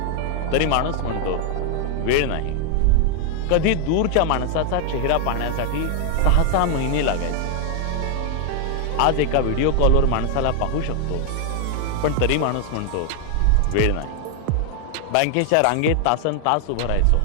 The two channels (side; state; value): both; different; correlation 0.00